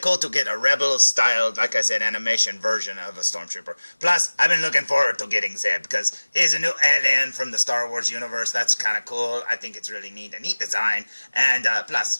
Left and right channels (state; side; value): inverted; both; correlation -1.00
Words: to get a Rebel-styled, like I said, animation version of a Stormtrooper. Plus, I've been looking forward to getting Zeb because he's a new alien from the Star Wars universe. That's kind of cool. I think it's really neat, a neat design. And